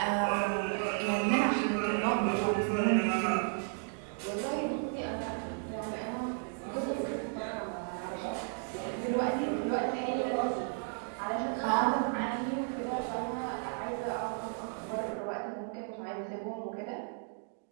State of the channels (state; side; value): silent; left; 55 dB below the other